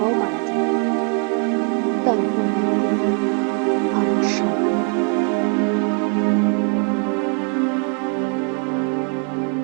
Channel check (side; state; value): left; quieter; 36.1 dB